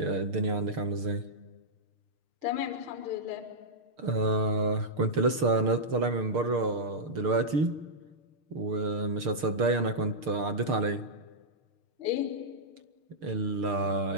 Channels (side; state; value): left; late; 6.6 ms